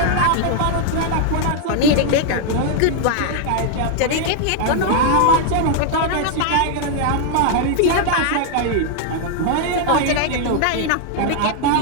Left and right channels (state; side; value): different; both; correlation 0.00